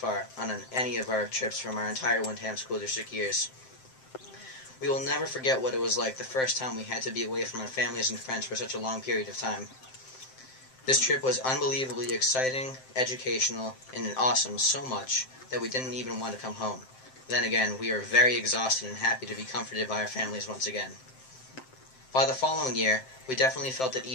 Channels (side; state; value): right; late; 7.7 ms